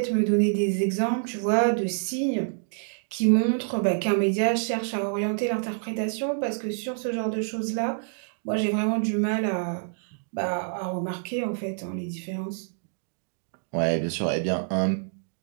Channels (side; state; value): left; silent; digital silence